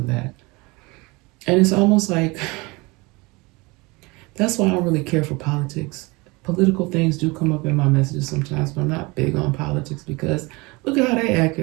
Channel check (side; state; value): left; quieter; 25.0 dB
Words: that. And it's almost like, that's why I don't really care for politics. Political things do come up in my messages sometimes, but I'm not big on politics because look at how they act,